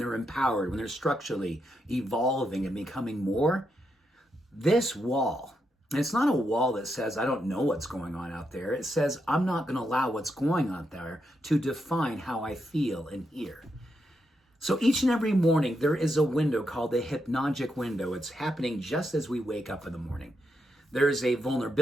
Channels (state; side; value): normal; both; correlation 0.83